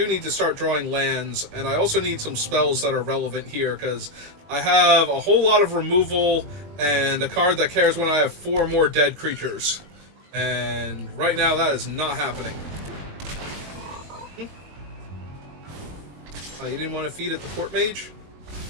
need to start drawing lands, and I also need some spells that are relevant here, because I have a whole lot of removal, and a card that cares when I have 4 more dead creatures. And right now, that is not happening. Oh, you didn't want to feed it the Court Mage?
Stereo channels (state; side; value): late; left; 21 ms